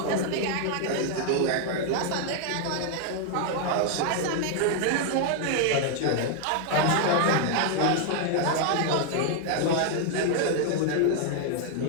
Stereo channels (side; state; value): both; different; correlation 0.00